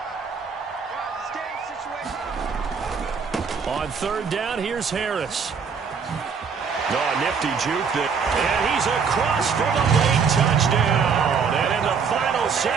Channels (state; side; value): quieter; left; 6.0 dB